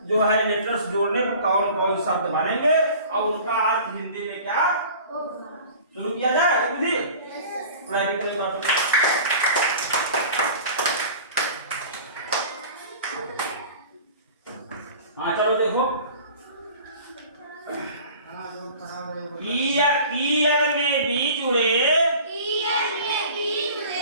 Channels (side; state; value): both; inverted; correlation -0.43